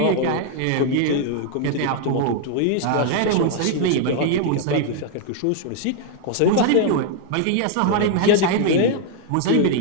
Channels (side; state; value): both; different; correlation 0.00